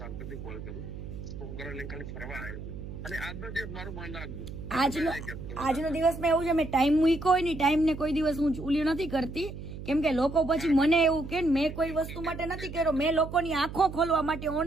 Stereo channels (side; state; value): right; noise; hum, 10 dB below the sound